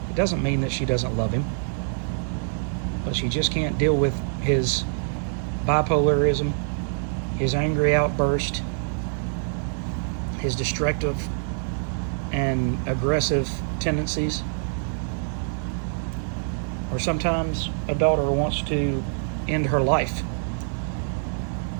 It doesn't mean that she doesn't love him, but she just can't deal with his bipolarism, his angry outburst, his destructive and aggressive tendencies. Or sometimes a daughter wants to end her life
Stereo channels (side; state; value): left; silent; 61 dB below the other